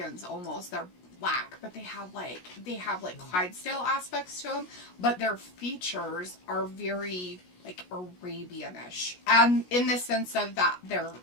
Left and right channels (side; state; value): right; late; 17 ms